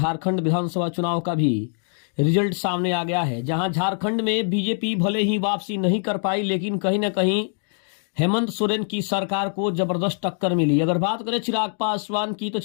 विधानसभा चुनाव का भी रिजल्ट सामने आ गया है, जहां झारखंड में बीजेपी भले ही वापसी नहीं कर पाई, लेकिन कहीं ना कहीं हेमंत सोरेन की सरकार को जबरदस्त टक्कर मिली। अगर बात करें चिराग पासवान की, तो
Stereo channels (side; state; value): right; silent; 58 dB below the other